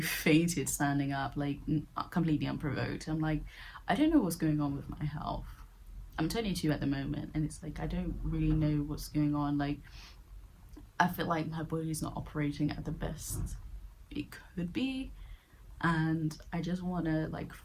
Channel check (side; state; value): both; identical; correlation 1.00